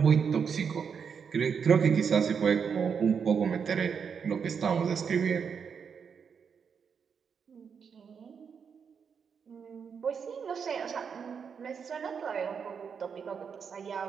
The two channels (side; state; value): left; quieter; 6.6 dB